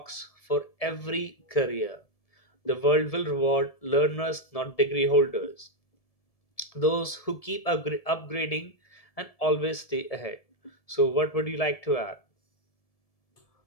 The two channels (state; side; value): late; right; 1.7 ms